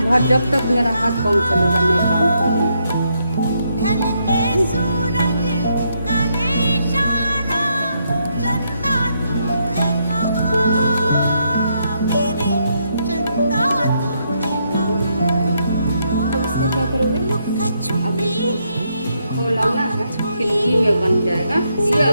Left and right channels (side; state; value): both; inverted; correlation -0.77